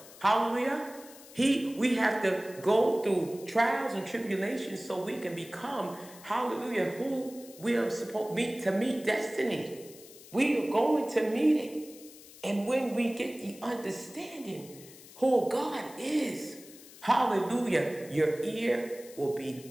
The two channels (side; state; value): left; noise; hiss, 19 dB below the sound